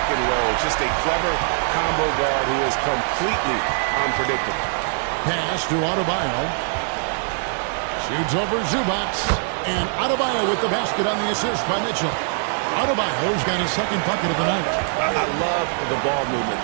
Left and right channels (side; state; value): left; silent; 63 dB below the other